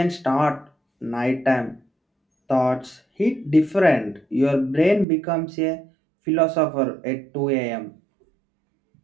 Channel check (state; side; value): drops out; left; at 5.1 s